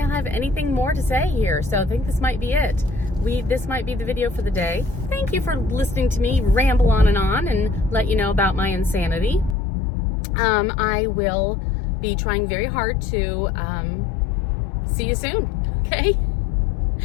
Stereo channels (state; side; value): drops out; right; at 9.6 s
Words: anything more to say here, so I think this might be it. This might be the video for the day. Thank you for listening to me ramble on and let you know about my insanity. I will be trying very hard to see you soon, okay?